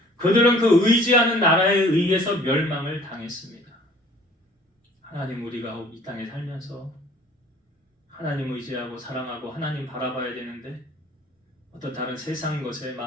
그들은 그 의지하는 나라에 의해서 멸망을 당했습니다. 하나님, 우리가 이 땅에 살면서 하나님 의지하고 사랑하고 하나님 바라봐야 되는데 어떤 다른 세상 것에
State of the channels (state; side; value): normal; both; correlation 0.53